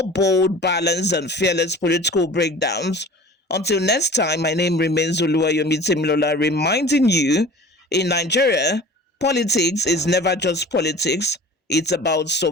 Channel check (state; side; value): normal; both; correlation 0.42